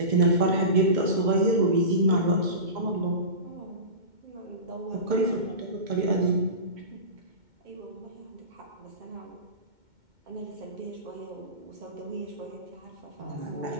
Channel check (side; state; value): left; late; 2.1 ms